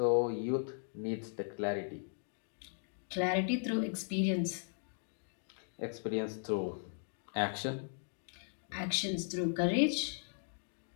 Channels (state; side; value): silent; right; digital silence